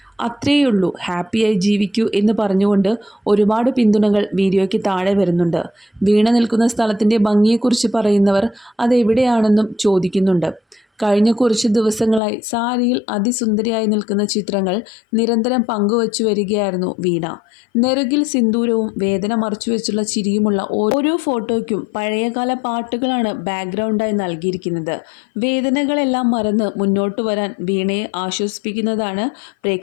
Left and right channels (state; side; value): drops out; right; at 12.2 s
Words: അത്രയുള്ളൂ, ഹാപ്പിയായി ജീവിക്കൂ എന്ന് പറഞ്ഞുകൊണ്ട് ഒരുപാട് പിന്തുണകൾ വീഡിയോയ്ക്ക് താഴെ വരുന്നുണ്ട്. വീണ നിൽക്കുന്ന സ്ഥലത്തിൻ്റെ ഭംഗിയെക്കുറിച്ച് പറയുന്നവർ അതെവിടെയാണെന്നും ചോദിക്കുന്നുണ്ട്. കഴിഞ്ഞ കുറച്ച് ദിവസങ്ങളായി സാരിയിൽ അതിസുന്ദരിയായി നിൽക്കുന്ന ചിത്രങ്ങൾ നിരന്തരം പങ്കുവച്ചു വരികയായിരുന്നു വീണ. നെറുകിൽ സിന്ദൂരവും വേദന മറച്ചുവെച്ചുള്ള ചിരിയുമുള്ള ഓരോ ഫോട്ടോയ്ക്കും പഴയകാല പാട്ടുകളാണ് ബാക്ക്ഗ്രൗണ്ടായി നൽകിയിരിക്കുന്നത്. വേദനകളെല്ലാം മറന്ന് മുന്നോട്ട് വരാൻ വീണയെ ആശ്വസിപ്പിക്കുന്നതാണ്